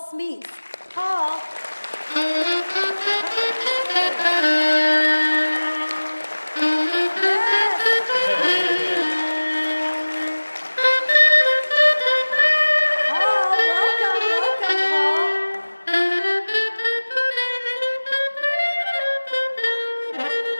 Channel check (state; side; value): inverted; both; correlation -1.00